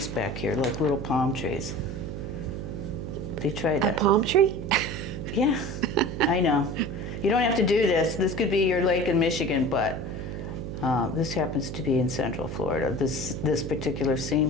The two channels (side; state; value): right; noise; hum, 6 dB below the sound